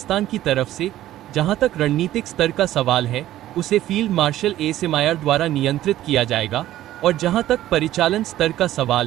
की तरफ से जहां तक रणनीतिक स्तर का सवाल है, उसे फील्ड मार्शल एसएमआईआर द्वारा नियंत्रित किया जाएगा, और जहां तक परिचालन स्तर का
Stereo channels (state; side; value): quieter; left; 13.9 dB